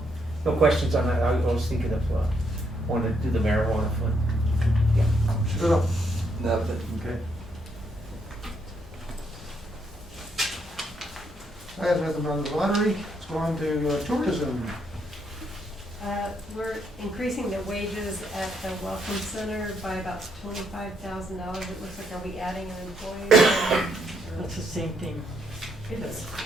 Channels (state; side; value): normal; both; correlation 0.75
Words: questions on that. I was thinking of, wanting to do the marijuana fund. Shut up. Nothing. Okay. I have nothing on the lottery. Let's go on to tourism. We're increasing the wages at the Welcome Center by about $25,000. It looks like, are we adding an employee? That's the same thing.